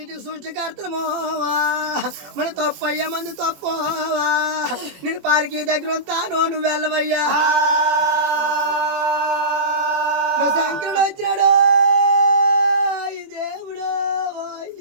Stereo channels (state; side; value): late; left; 21 ms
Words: సృష్టికర్తలమోవా మన తప్పయ్యా మంది తప్పవా నేను పాలకి దగ్గర ఉంటాను నువ్వు వెళ్ళవయ్యా శంకరుడు వచ్చినాడు ఈ దేవుడు